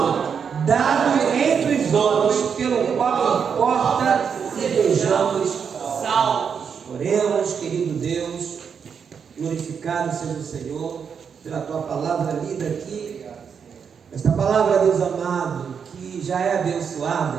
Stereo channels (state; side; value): quieter; left; 6.8 dB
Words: dado entre os homens pelo qual importa sejamos salvos. Oremos, querido Deus, glorificado seja o Senhor pela tua palavra lida aqui. Esta palavra, Deus amado, que já é